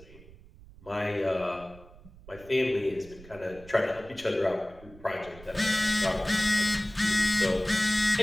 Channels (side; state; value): right; noise; rumble, 21 dB below the sound